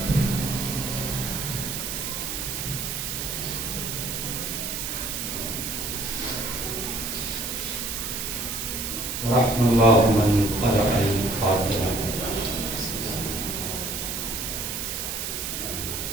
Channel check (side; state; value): right; noise; hiss, 3 dB below the sound